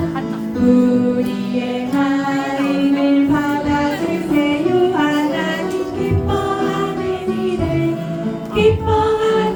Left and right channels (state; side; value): identical; both; correlation 1.00